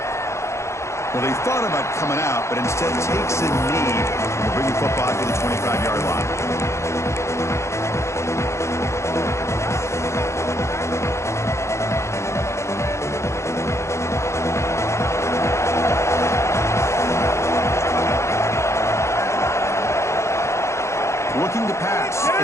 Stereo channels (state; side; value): late; right; 0.14 ms